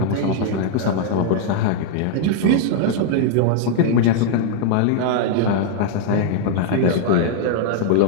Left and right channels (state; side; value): different; both; correlation 0.00